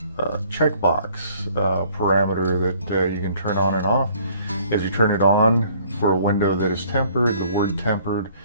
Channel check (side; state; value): both; inverted; correlation -0.58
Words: checkbox parameter that you can turn on and off. As you turn it on for a window that is tempered, the word tempered